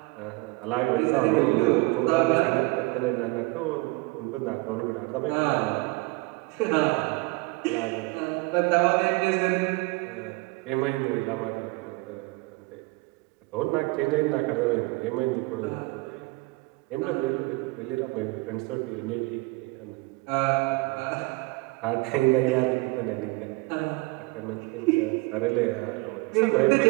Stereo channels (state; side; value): quieter; left; 25.0 dB